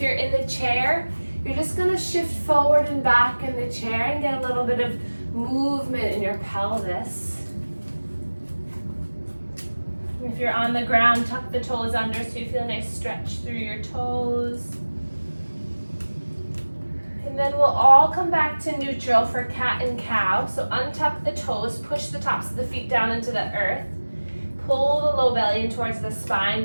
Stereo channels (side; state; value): both; inverted; correlation -1.00